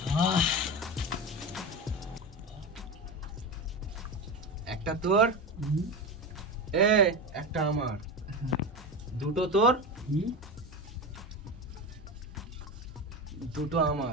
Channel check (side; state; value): both; normal; correlation 0.22